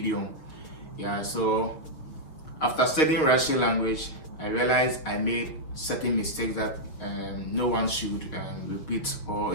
yeah. So after studying Russian language, I realized I made certain mistakes that no one should repeat, or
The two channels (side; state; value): right; late; 6.6 ms